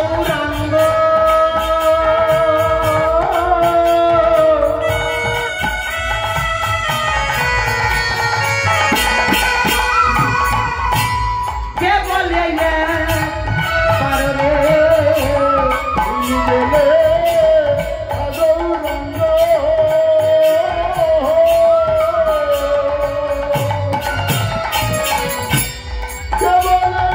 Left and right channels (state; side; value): identical; both; correlation 1.00